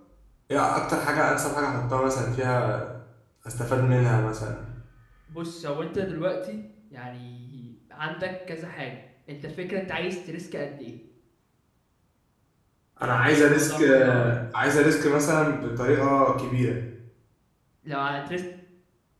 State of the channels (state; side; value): identical; both; correlation 1.00